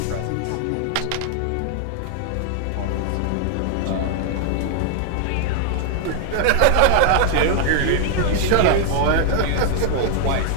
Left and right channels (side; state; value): both; different; correlation 0.00